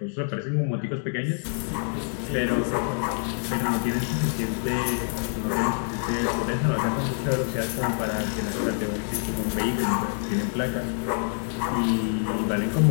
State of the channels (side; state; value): right; silent; 61 dB below the other